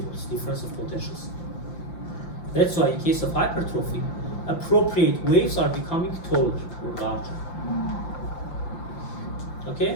difference of potentials. That's why in case of hypertrophy, appropriate waves are becoming taller or larger.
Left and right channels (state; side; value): late; right; 5.8 ms